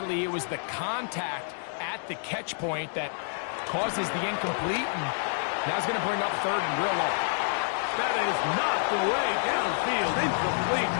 it was the contact at the catch point that causes the incomplete, and now it's going to bring up third and real low. That is knocked away downfield, incomplete.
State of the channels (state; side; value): silent; right; digital silence